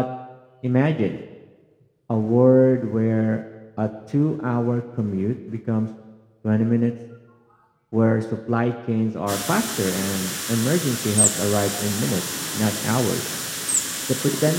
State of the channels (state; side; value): identical; both; correlation 1.00